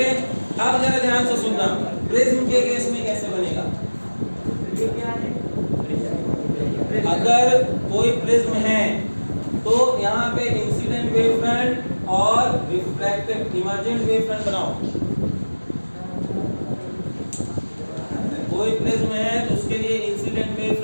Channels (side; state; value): both; inverted; correlation -1.00